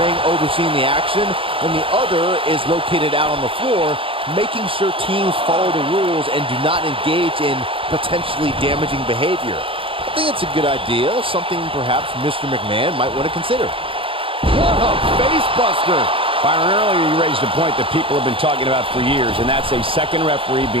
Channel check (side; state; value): left; late; 0.26 ms